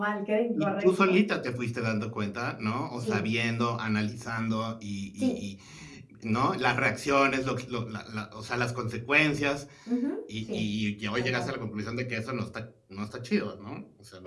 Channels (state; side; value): identical; both; correlation 1.00